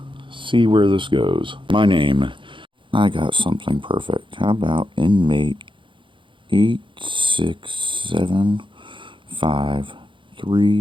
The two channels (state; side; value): late; left; 0.24 ms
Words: See where this goes. My name. I got something perfect. How about inmate